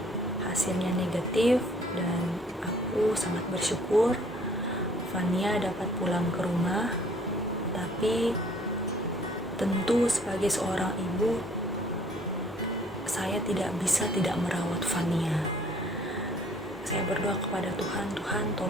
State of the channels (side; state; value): both; normal; correlation 0.59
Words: hasilnya negatif, dan aku sangat bersyukur Fania dapat pulang ke rumah. Tapi tentu sebagai seorang ibu, saya tidak bisa tidak merawat Fania. Saya berdoa kepada Tuhan